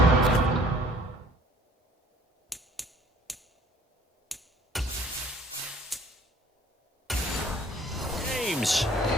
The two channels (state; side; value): normal; both; correlation 0.55